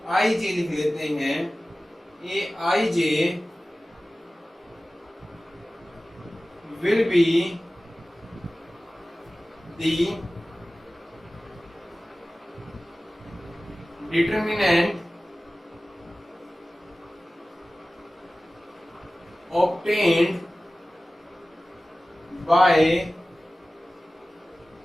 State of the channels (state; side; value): normal; both; correlation 0.97